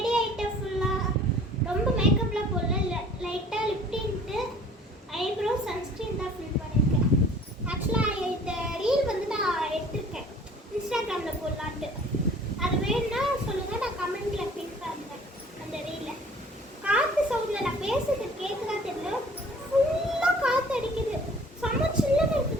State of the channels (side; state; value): both; normal; correlation 0.50